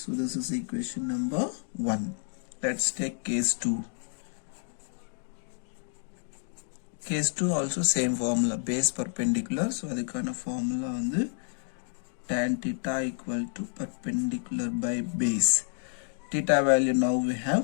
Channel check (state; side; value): silent; right; 58 dB below the other